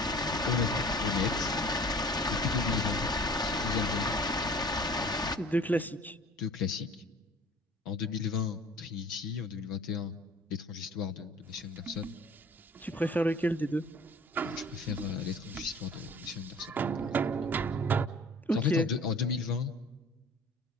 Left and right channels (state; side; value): normal; both; correlation 0.47